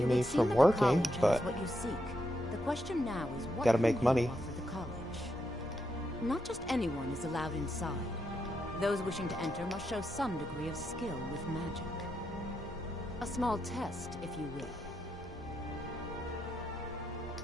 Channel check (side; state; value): both; normal; correlation 0.82